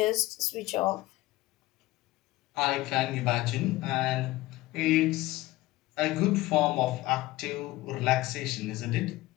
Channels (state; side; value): quieter; right; 18.0 dB